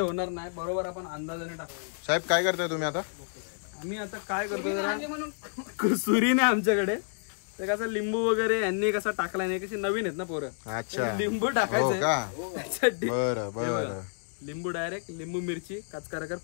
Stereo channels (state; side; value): silent; right; digital silence